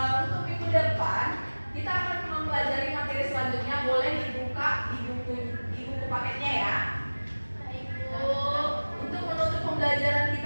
untuk minggu depan kita akan mempelajari materi selanjutnya. Boleh dibuka di buku paketnya ya. Baik, Bu, untuk menutup pembelajaran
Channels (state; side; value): inverted; both; correlation -1.00